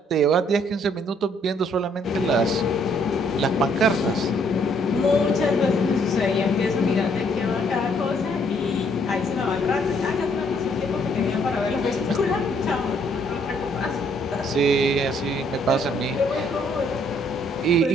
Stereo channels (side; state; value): both; normal; correlation 0.67